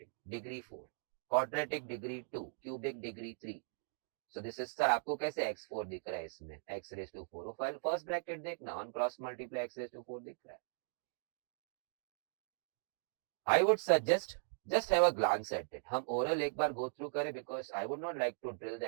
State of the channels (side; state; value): left; silent; digital silence